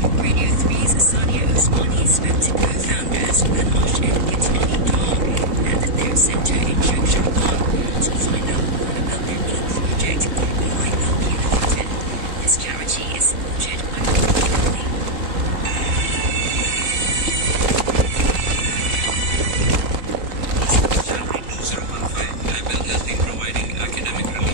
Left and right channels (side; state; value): left; late; 3.0 ms